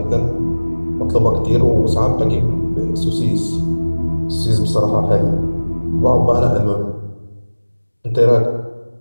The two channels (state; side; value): inverted; both; correlation -1.00